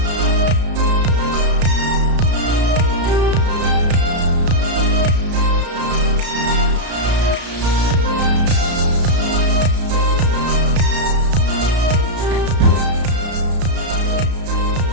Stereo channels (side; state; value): left; late; 33 ms